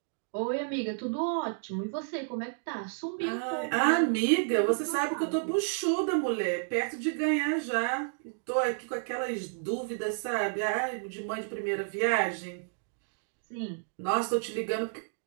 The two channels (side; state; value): left; silent; digital silence